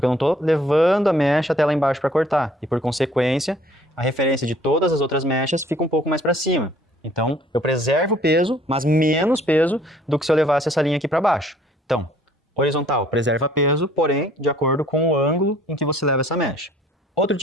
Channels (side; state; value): both; normal; correlation 0.57